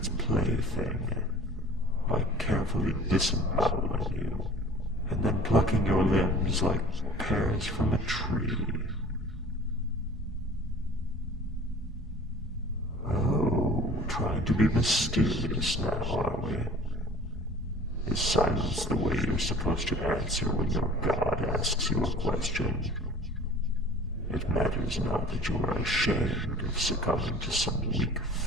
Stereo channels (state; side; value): normal; both; correlation 0.45